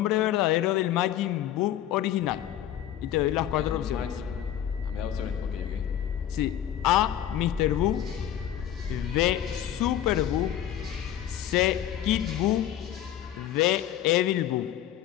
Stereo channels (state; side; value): quieter; right; 11.2 dB